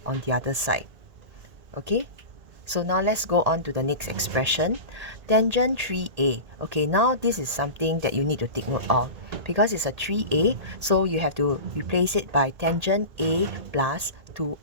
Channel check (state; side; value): late; left; 1.8 ms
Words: on the other side. Okay, so now let's go on to the next expression, tangent 3a. Okay, now this is something that you need to take note of. Because it's a 3a, so you have to replace it by tangent a plus